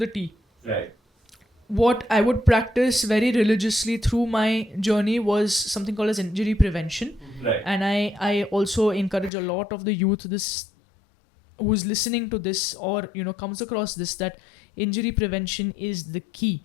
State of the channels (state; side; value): drops out; right; at 9.3 s